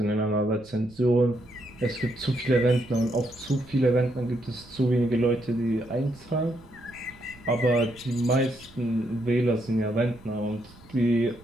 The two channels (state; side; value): noise; right; rumble, 24 dB below the sound